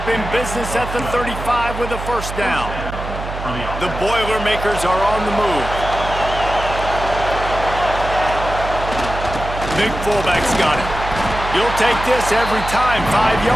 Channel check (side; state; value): right; noise; hum, 8 dB below the sound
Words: in business at the 35 with a first down. The Boilermakers are on the move. Big fullback's got it. You'll take this every time. 5